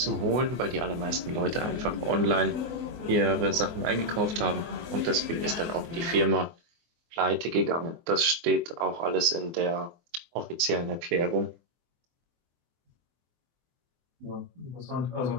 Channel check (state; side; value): late; left; 24 ms